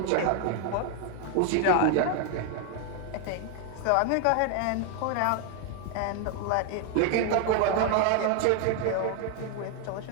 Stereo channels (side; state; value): both; different; correlation 0.01